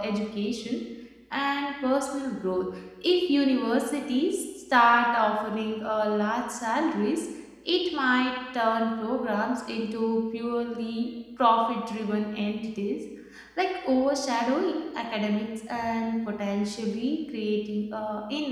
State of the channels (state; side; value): identical; both; correlation 1.00